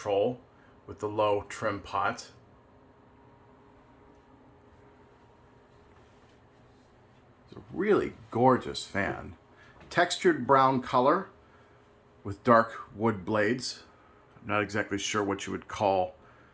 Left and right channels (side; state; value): both; identical; correlation 1.00